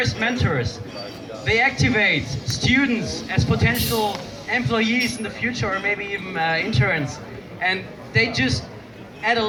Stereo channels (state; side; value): identical; both; correlation 1.00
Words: mentors. They activate students as potential employees in the future, or maybe even interns. And they just add a